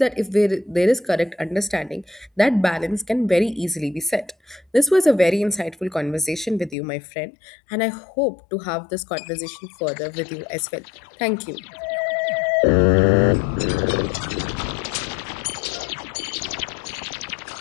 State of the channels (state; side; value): drops out; right; at 6.8 s